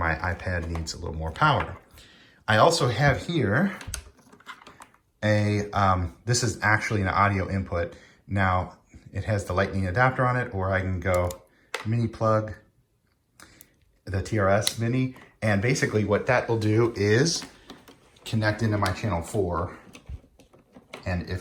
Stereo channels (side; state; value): both; identical; correlation 1.00